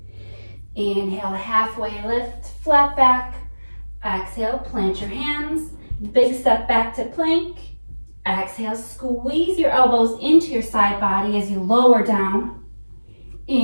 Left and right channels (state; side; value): inverted; both; correlation -1.00